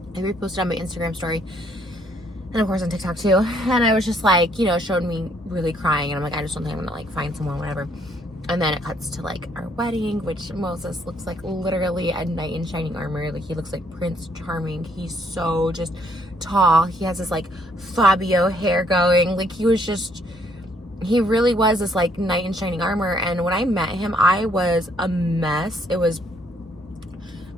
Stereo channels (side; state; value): both; normal; correlation 0.68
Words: I reposted on my Instagram story. And of course on TikTok too. And I was just like, you know, showed me really crying. And I'm like, I just don't think I'm going to like find someone, whatever. And then it cuts to like our wedding, which Moses looks like literally a knight in shining armor. Like he looks like Prince Charming. He's so just tall. He has this like Fabio hair going. Like he really was this like knight in shining armor. And when I met him, I was a mess. The